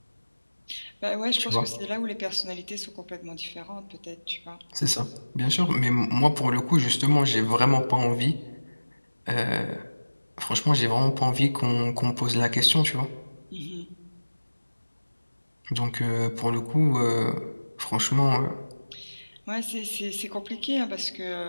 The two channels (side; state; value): both; inverted; correlation -1.00